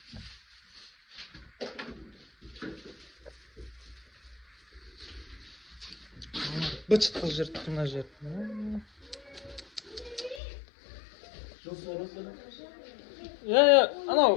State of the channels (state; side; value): drops out; right; at 10.4 s